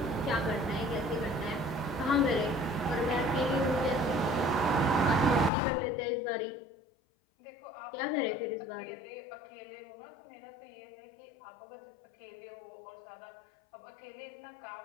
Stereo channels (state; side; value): drops out; right; at 5.5 s